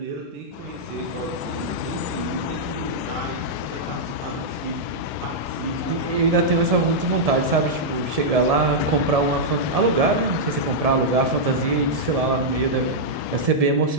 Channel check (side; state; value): left; late; 1.7 ms